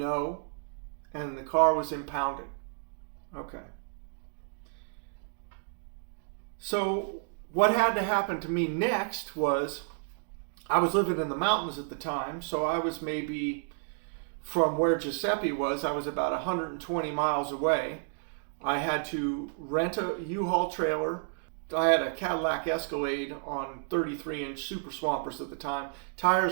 And the car was impounded. Okay. So what had to happen to me next was, I was living in the mountains at the time, so I was maybe from where Giuseppe was, I was about 120 miles away. I had to rent a U-Haul trailer. I had a Cadillac Escalade on 33-inch Super Swampers at the time.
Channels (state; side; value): silent; left; digital silence